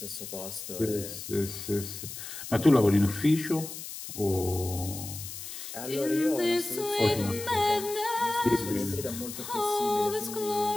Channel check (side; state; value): left; noise; hiss, 10 dB below the sound